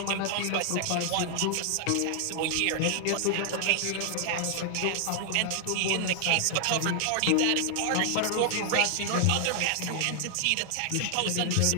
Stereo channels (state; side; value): different; both; correlation 0.00